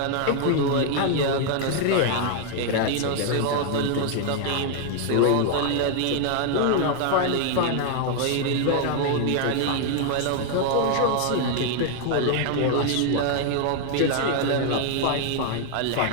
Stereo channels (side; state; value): both; different; correlation 0.00